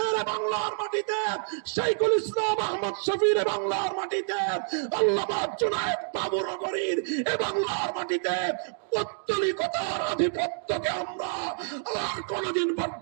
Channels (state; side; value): silent; left; digital silence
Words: বাংলার মাটিতে, শাইখুল ইসলাম আহমদ শফির বাংলার মাটিতে, আল্লামা জুনায়েদ বাবুনগরীর এই বাংলার মাটিতে পৌত্তলিকতার আধিপত্যকে আমরা আর কোনদিন